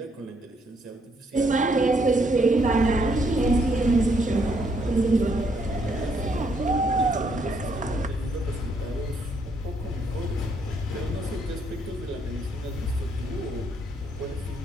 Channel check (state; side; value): normal; both; correlation 0.72